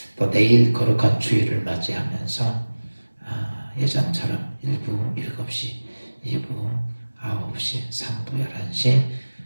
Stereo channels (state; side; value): inverted; both; correlation -1.00